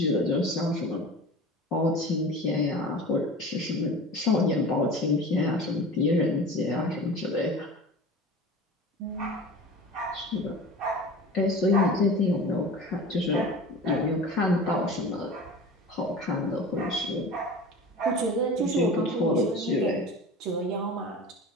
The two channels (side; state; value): both; normal; correlation 0.35